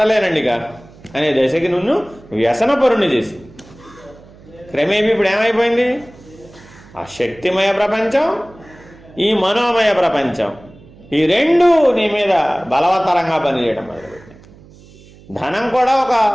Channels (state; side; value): noise; right; hum, 24 dB below the sound